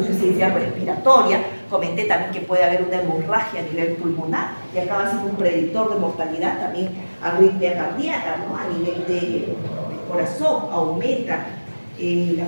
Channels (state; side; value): inverted; both; correlation -1.00